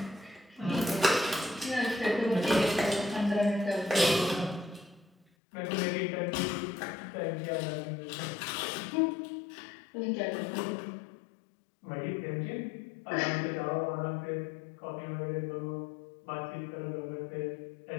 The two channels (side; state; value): right; drops out; at 5.2 s